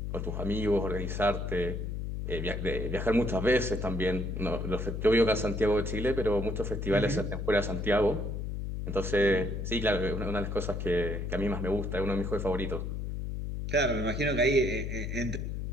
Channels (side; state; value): left; noise; hum, 4 dB below the sound